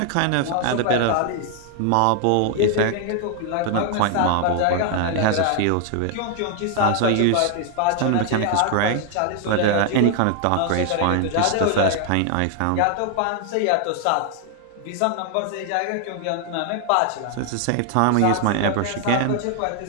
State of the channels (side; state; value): both; different; correlation 0.00